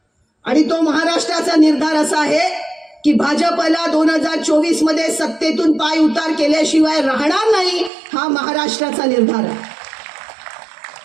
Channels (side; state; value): left; drops out; at 7.9 s